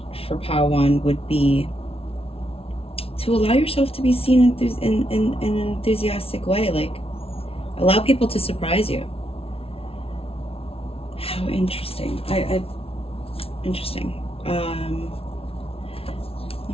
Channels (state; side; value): late; right; 0.27 ms